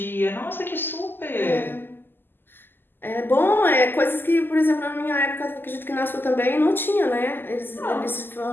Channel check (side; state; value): right; late; 0.096 ms